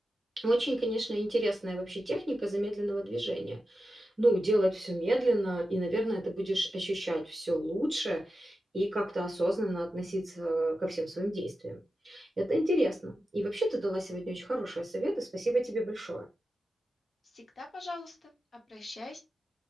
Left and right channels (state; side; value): normal; both; correlation 0.91